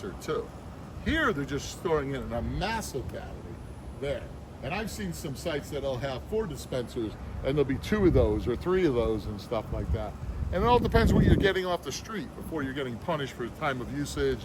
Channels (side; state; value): both; identical; correlation 1.00